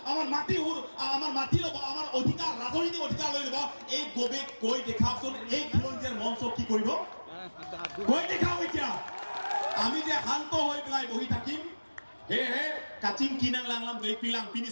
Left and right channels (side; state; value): both; inverted; correlation -1.00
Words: আমাৰ মাটি ল'ব আমাৰ অধিকাৰ ৰাজনৈতিক অধিকাৰ লৈ ল'ব এই গৌৰৱ কৈ দেখাওকচোন এই খিলঞ্জীয়াৰ মঞ্চ কি কৰিব কৈ দেখাও এতিয়া আমি যে শান্ত হৈ পেলাই বহি থাকিম হে কাচিং কিনাং লাংলাম গৈ পিলাং পিনি